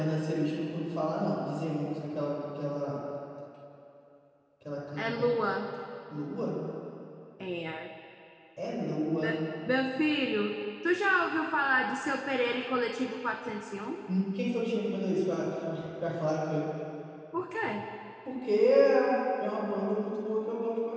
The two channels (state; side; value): identical; both; correlation 1.00